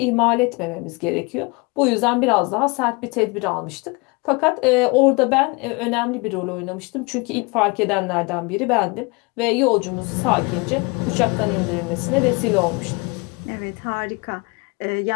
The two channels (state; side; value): quieter; right; 27.8 dB